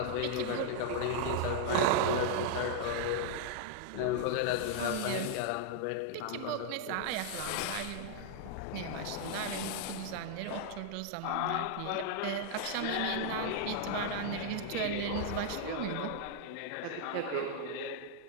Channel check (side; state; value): both; different; correlation -0.01